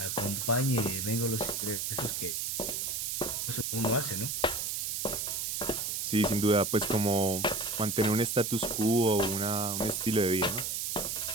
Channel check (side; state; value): right; noise; hiss, 1 dB below the sound